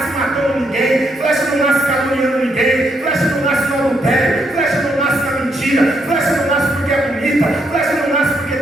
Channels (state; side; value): normal; both; correlation 0.76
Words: matando ninguém, flecha não nasce caluniando ninguém, flecha não nasce no adultério, flecha não nasce na mentira, flecha não nasce porque é bonita, flecha não nasce porque